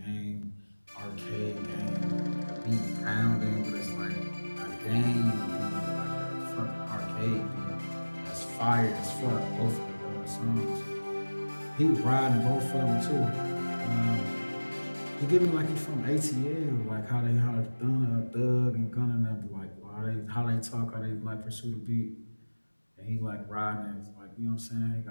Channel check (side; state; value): both; inverted; correlation -1.00